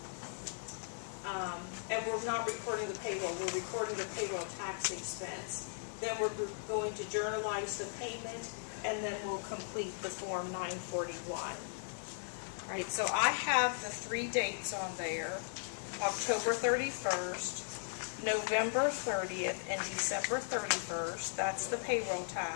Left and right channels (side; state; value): right; silent; digital silence